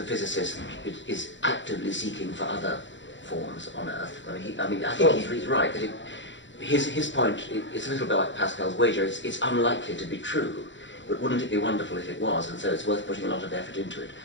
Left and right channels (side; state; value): right; late; 0.54 ms